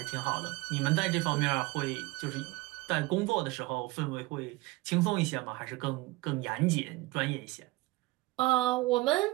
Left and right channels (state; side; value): quieter; left; 21.4 dB